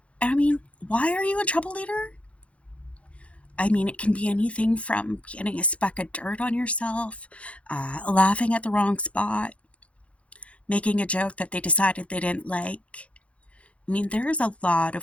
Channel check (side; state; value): right; late; 0.063 ms